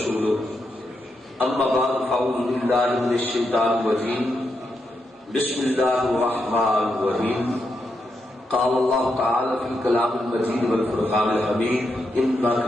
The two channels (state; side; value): normal; both; correlation 0.83